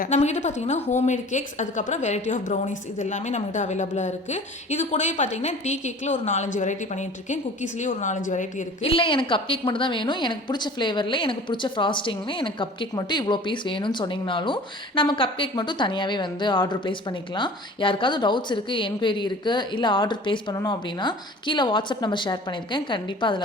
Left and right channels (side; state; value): both; normal; correlation 0.44